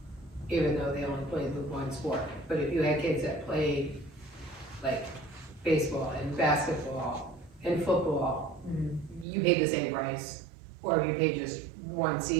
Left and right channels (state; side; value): drops out; left; at 9.2 s